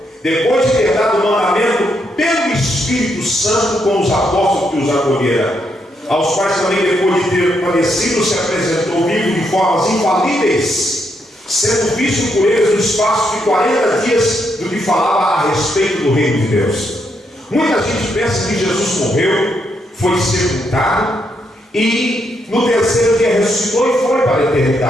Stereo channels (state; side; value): normal; both; correlation 0.78